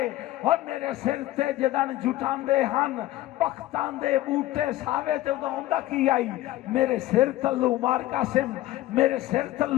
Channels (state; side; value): quieter; right; 15.8 dB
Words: اور میرے سر تے جدن جھٹان دے ہن پختان دے بوٹے ساوے تے ہوندہ کی آئی میرے سر تلو مار قاسم میرے سر